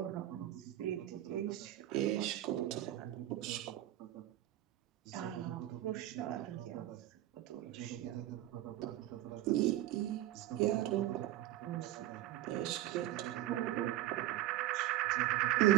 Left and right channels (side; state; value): left; quieter; 14.2 dB